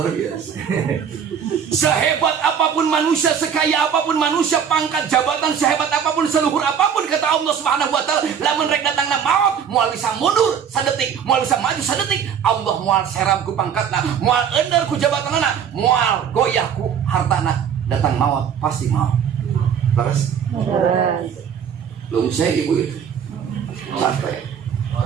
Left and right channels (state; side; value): quieter; left; 7.9 dB